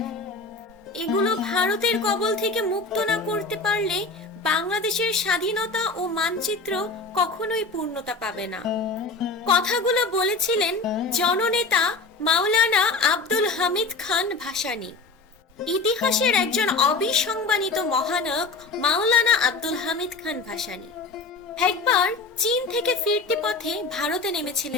এগুলো ভারতের কবল থেকে মুক্ত না করতে পারলে বাংলাদেশের স্বাধীনতা ও মানচিত্র কখনোই পূর্ণতা পাবে না। কথাগুলো বলেছিলেন জননেতা মাওলানা আব্দুল হামিদ খান ভাসানী। ইতিহাসের একজন অবিসংবাদিত মহানায়ক মাওলানা আব্দুল হামিদ খান ভাসানী। একবার চীন থেকে ফিরতি পথে ভারতে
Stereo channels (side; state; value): right; quieter; 3.7 dB